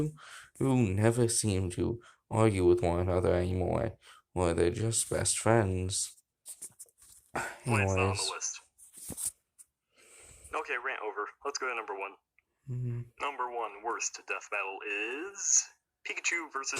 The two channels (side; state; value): both; identical; correlation 1.00